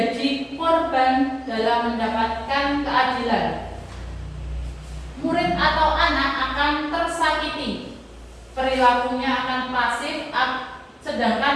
korban dalam mendapatkan keadilan. Murid atau anak akan tersakiti. Perilakunya akan pasif,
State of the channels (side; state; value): both; identical; correlation 1.00